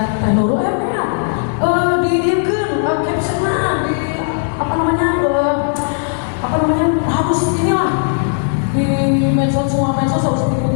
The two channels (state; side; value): silent; right; digital silence